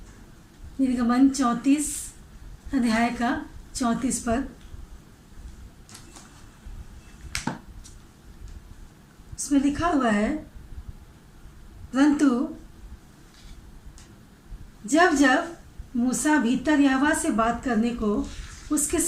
निर्गमन 34 अध्याय का 34 पद, उसमें लिखा हुआ है, परंतु जब जब मूसा भीतर यहोवा से बात करने को उसके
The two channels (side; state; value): both; identical; correlation 1.00